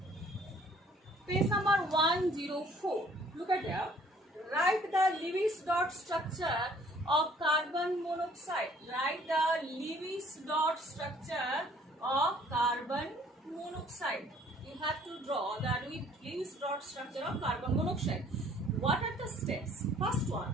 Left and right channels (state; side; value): normal; both; correlation 0.58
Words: page number 104. Look at there. Write the Lewis dot structure of carbon monoxide. Write the Lewis dot structure of carbon monoxide. You have to draw the Lewis dot structure of carbon monoxide. What are the steps? First one,